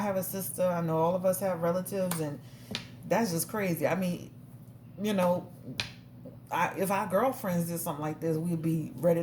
have a sister. I know all of us have relatives, and that's just crazy. I mean, you know, if our girlfriends did something like this, we'd be ready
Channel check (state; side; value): identical; both; correlation 1.00